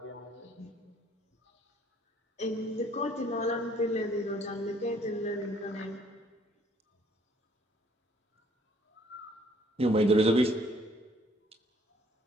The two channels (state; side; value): normal; both; correlation 0.62